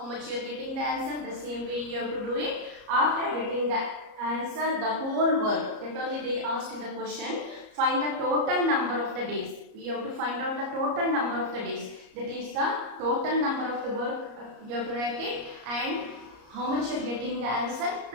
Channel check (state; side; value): late; left; 34 ms